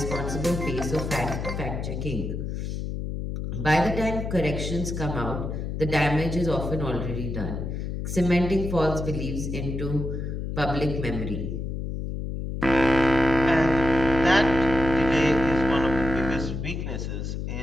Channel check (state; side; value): noise; left; hum, 4 dB below the sound